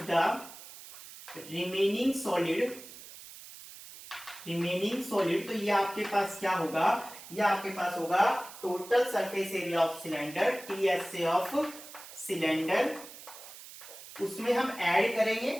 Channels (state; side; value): noise; right; hiss, 16 dB below the sound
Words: the remaining solid, तो ये आपके पास क्या होगा, ये आपके पास होगा total surface area of cylinder, TSA of cylinder. उसमें हम ऐड करेंगे,